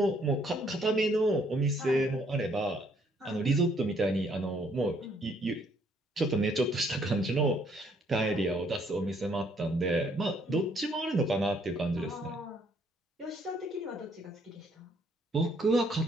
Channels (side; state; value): both; normal; correlation 0.66